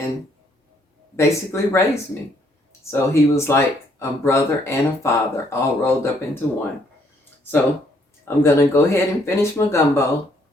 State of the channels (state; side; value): normal; both; correlation 0.68